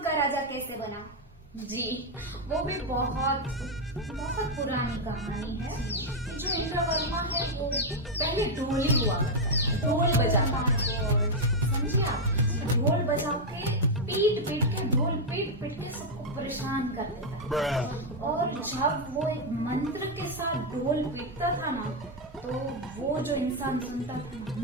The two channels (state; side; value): normal; both; correlation 0.01